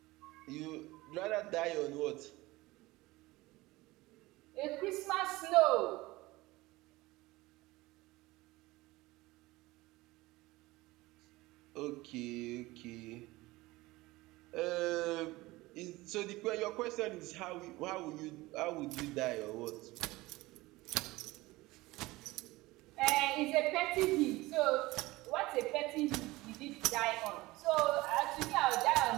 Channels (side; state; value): left; quieter; 20.0 dB